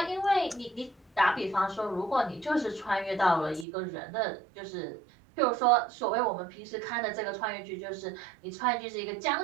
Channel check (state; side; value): drops out; left; at 3.7 s